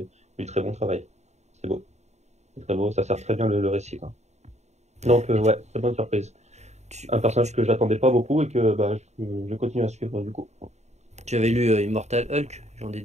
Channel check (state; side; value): late; left; 0.32 ms